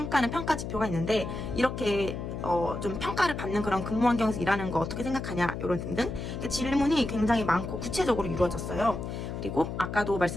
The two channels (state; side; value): noise; left; hum, 6 dB below the sound